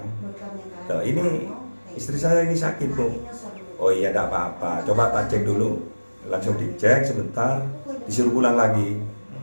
Loh, ini istri saya ini sakit Bu. Oh iya, tidak apa-apa, coba tak cek dulu. Langsung dicek sebentar, disuruh pulang lagi.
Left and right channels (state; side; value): inverted; both; correlation -1.00